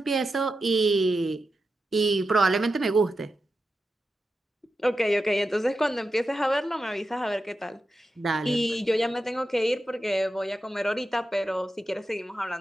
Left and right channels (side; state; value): both; normal; correlation 0.90